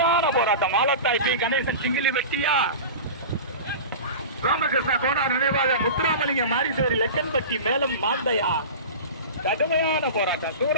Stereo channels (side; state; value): both; inverted; correlation -0.31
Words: போராட்டம் மாலத்தாய் பி கணேசன் சிங்கிலி வெட்டியா, ராமகிருஷ்ண கோனார் நினைவாக முத்துராமலிங்க மாரிசேரி லெக்கன்பட்டி மேலும் மாந்தையா. கடுமையான போராட்டம்.